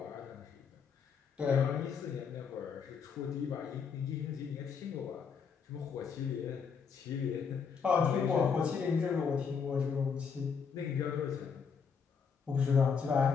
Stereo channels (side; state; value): right; quieter; 6.2 dB